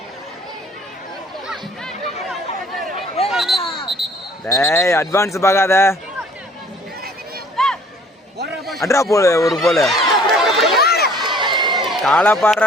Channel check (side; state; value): both; normal; correlation 0.55